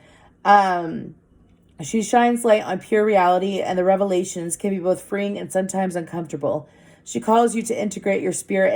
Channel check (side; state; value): both; identical; correlation 1.00